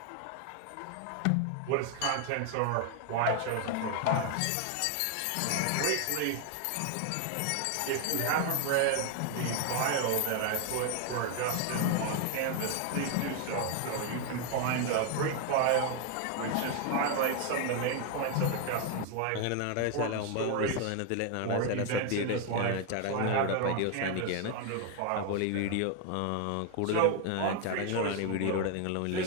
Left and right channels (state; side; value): different; both; correlation 0.01